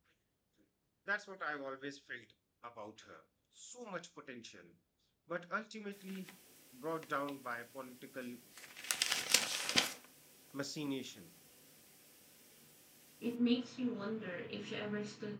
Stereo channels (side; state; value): both; identical; correlation 1.00